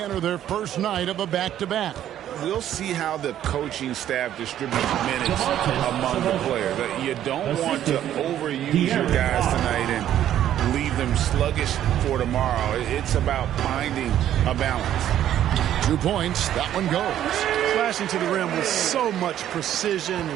enter their first night of a back-to-back? We'll see how the coaching staff distributes minutes among the players. You don't want to overuse your guys tonight and leave them sluggish for tomorrow. It's about finding a balance. 2 points. That one goes. Flashing to the rim with so much precision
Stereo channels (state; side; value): quieter; left; 11.4 dB